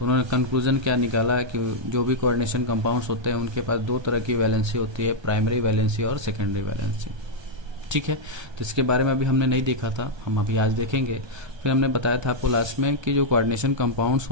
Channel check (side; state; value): left; late; 1.3 ms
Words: उन्होंने कंक्लूजन क्या निकाला कि जो भी कोऑर्डिनेशन कंपाउंड्स होते हैं उनके पास दो तरह की वैलेंसी होती है, प्राइमरी वैलेंसी और सेकेंडरी वैलेंसी। ठीक है, तो इसके बारे में अभी हमने नहीं देखा था, हम अभी आज देखेंगे। फिर हमने बताया था आपको लास्ट में कि जो कोऑर्डिनेशन कंपाउंड्स